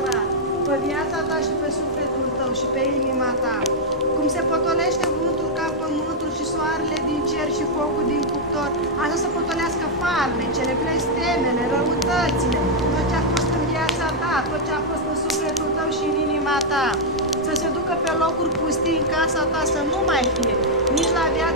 pe viața ta și pe sufletul tău și pe inima ta. Cum se potolește vântul ca pământul și soarele din cer și focul din cuptor, așa să potolească farmecele, blestemele, răutățile, tot ce a fost în viața ta, tot ce a fost în sufletul tău și în inima ta. Să se ducă pe locuri pustii în casa ta, să nu mai fie, nici la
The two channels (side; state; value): both; normal; correlation -0.03